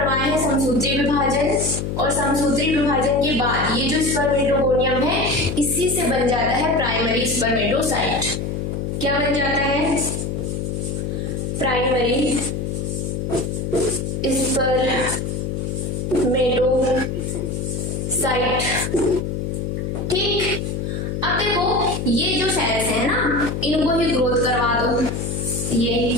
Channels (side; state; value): left; noise; hum, 3 dB below the sound